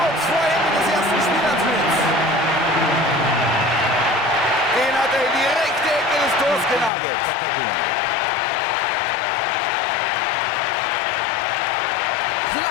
vor Ende des ersten Spielabschnitts. Den hat er in die rechte Ecke des Tors genagelt.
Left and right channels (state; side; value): drops out; right; at 6.9 s